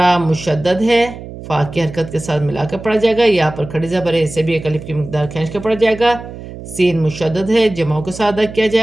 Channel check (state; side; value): noise; right; hum, 13 dB below the sound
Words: مشدد ہے، فا کی حرکت کے ساتھ ملا کر پڑھا جائے گا، یا پر کھڑی زبر ہے، اسے بھی ایک الف کی مقدار کھینچ کر پڑھا جائے گا، سین مشدد ہے، جمعوں کے ساتھ ادا کیا